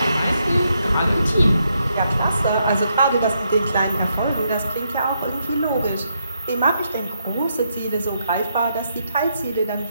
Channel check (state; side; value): inverted; both; correlation -0.79